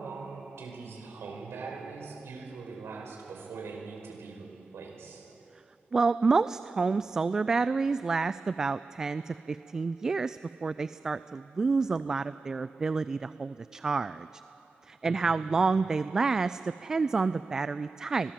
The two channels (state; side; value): quieter; left; 3.9 dB